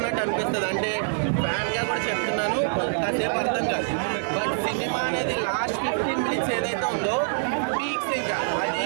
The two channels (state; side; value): silent; left; 60 dB below the other